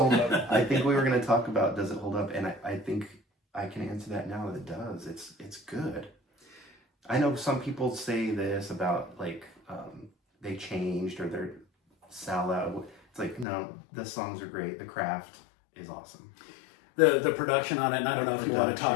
hold up. I think we were going to talk about does it hold up, and I think I can answer that now. It does. It's good. I know some people say this about like they changed or they're salad. It's like no, the songs are great. The craft is awesome. The production on it, and I don't know if you want to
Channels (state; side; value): drops out; right; at 13.5 s